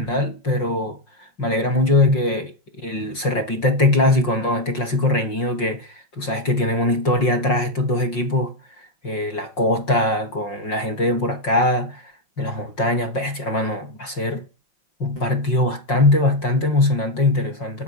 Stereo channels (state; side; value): late; right; 5.6 ms